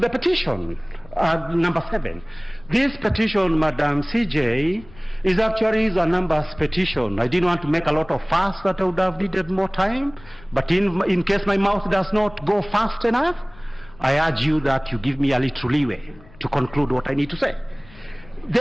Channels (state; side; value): noise; left; rumble, 23 dB below the sound